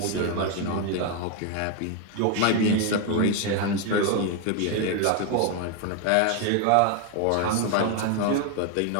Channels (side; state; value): both; different; correlation 0.01